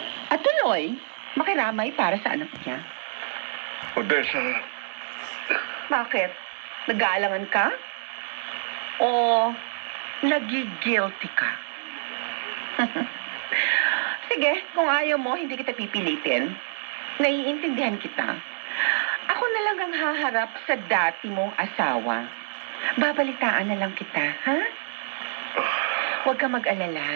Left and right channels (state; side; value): silent; left; digital silence